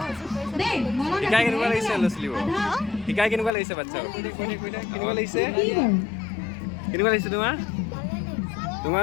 শিকাই কেনেকুৱা লাগিছে ল'ৰা ছোৱালীবোৰ? শিকাই কেনেকুৱা লাগিছে বাচ্ছা? কেনেকুৱা লাগিছে? কেনেকুৱা লাগিছে তোমাৰ?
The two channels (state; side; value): drops out; right; at 3.5 s